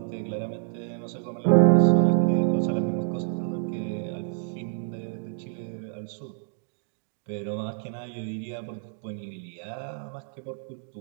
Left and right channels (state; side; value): silent; left; digital silence